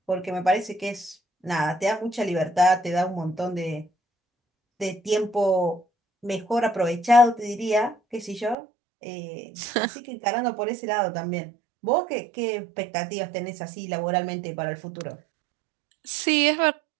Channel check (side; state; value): left; drops out; at 8.6 s